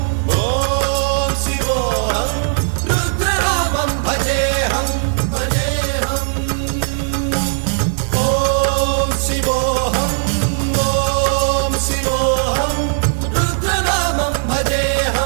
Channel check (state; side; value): silent; left; digital silence